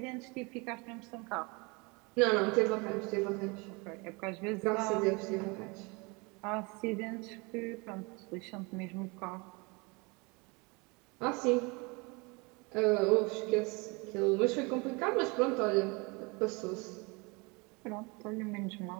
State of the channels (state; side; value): quieter; left; 28.2 dB